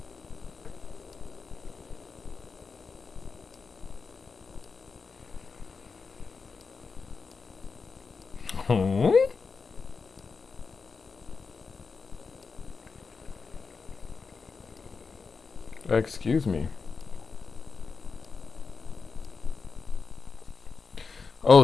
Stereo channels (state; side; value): quieter; right; 4.9 dB